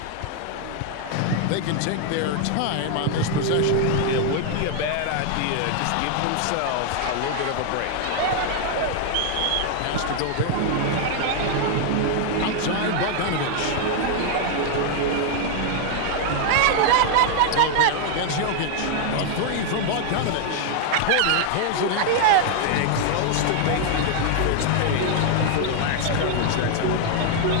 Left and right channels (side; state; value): both; different; correlation 0.00